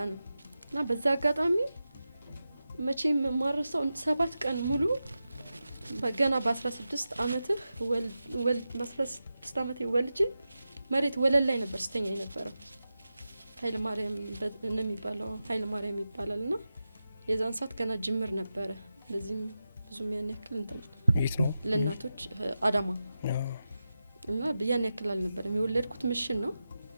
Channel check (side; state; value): both; inverted; correlation -0.92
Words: እና በዛ አጋጣሚ መቼም ማረሳው 7 ቀን ሙሉ በገና በ16 አመትህ በ16 አመቴ ወልጄ መሬት ወለል ላይ ነበር ስተኛ የነበረው። ኃይለ ማርያም እንደሚባለው ኃይለ ማርያም ይባላልና የዛን ሰዓት ገና ጅምር ነበረ። ለዚህም ብዙም ያን ያክል እንትን ነው ለእናቶች አዳማ እና ያን ያክል አልነበረም። የወለድኩት ምሽን ነው።